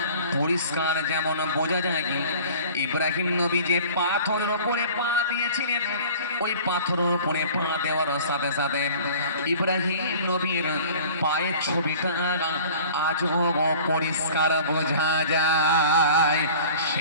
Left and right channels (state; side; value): inverted; both; correlation -0.44